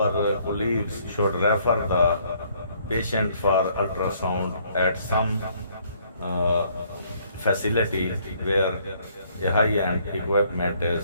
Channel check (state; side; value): inverted; both; correlation -0.64